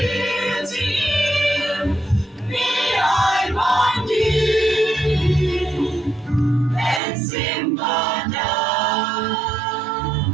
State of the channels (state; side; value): drops out; left; at 7.0 s